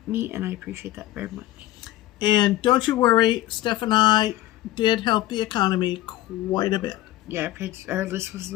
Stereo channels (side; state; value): right; quieter; 15.4 dB